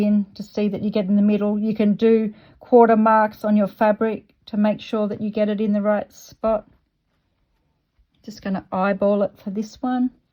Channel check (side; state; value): both; identical; correlation 1.00